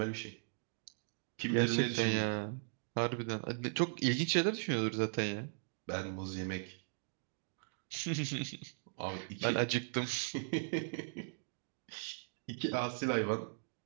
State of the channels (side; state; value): left; silent; digital silence